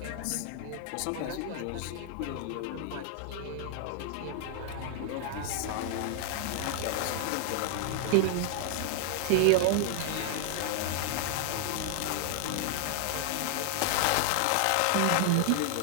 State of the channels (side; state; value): both; different; correlation 0.00